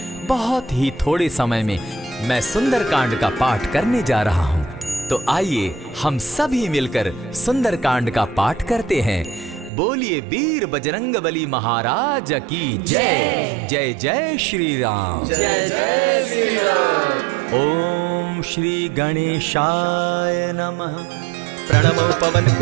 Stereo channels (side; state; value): left; drops out; at 9.7 s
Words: बहुत ही थोड़े समय में मैं सुंदर कांड का पाठ करने जा रहा हूँ। तो आइए हम सभी मिलकर सुंदर कांड का पाठ करते हैं। बोलिए वीर बजरंगबली महाराज की जय। जय जय श्री राम। जय जय श्री राम। ओम श्री गणेशाय नमः। प्रणमो पवन